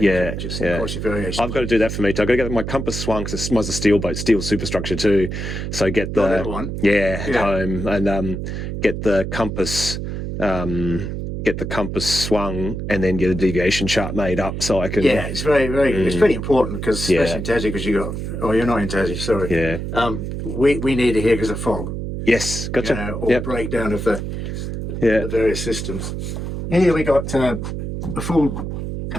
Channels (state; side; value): noise; right; hum, 5 dB below the sound